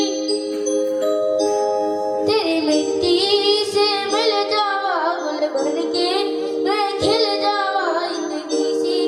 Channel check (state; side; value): identical; both; correlation 1.00